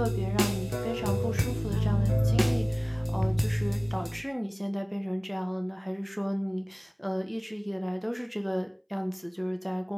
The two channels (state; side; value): identical; both; correlation 1.00